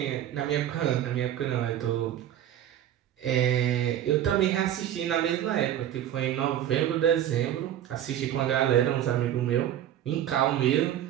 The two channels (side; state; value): left; quieter; 11.4 dB